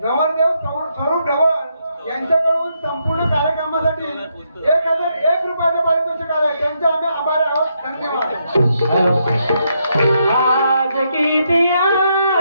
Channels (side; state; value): both; inverted; correlation -0.78